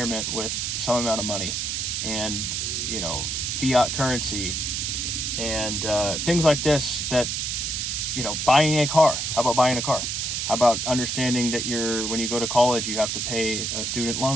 with some amount of money and fiat currency and things like this. That buying a car. How about buying a car? How about understanding that when you go to college, you have to pay a student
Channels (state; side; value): noise; right; hiss, 1 dB below the sound